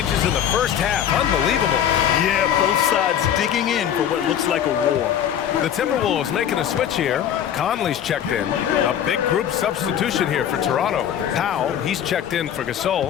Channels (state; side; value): quieter; right; 9.6 dB